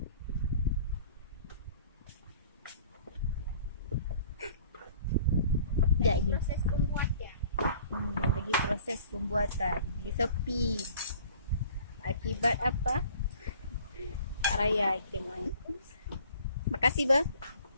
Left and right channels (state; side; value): inverted; both; correlation -0.51